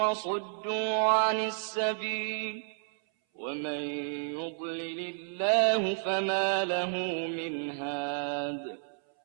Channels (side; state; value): left; silent; 57 dB below the other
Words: عن السبيل ومن يضلل الله فما له من هاد